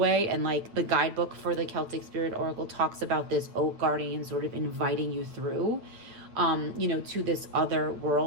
and like the guidebook for the Celtic Spirit Oracle talks about this oak guardian sort of inviting you through, to this other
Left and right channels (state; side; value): late; left; 8.8 ms